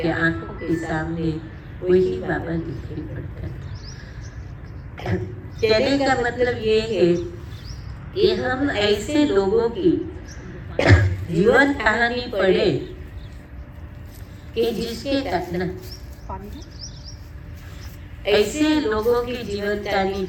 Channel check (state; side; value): identical; both; correlation 1.00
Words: आंखों के सामने वही बाबा दिखाई पड़ता था। कहने का मतलब ये है कि हम ऐसे लोगों की जीवन कहानी पढ़े कि जिसके कारण ऐसे लोगों की जीवन कहानी